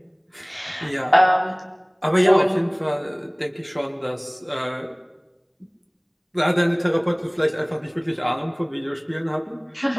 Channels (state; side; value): identical; both; correlation 1.00